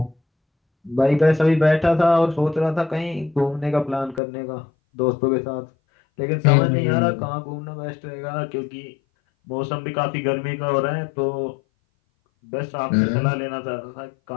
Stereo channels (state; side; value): drops out; right; at 4.2 s